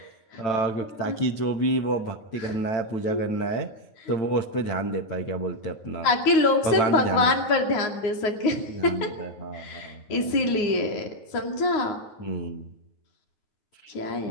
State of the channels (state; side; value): late; right; 9.6 ms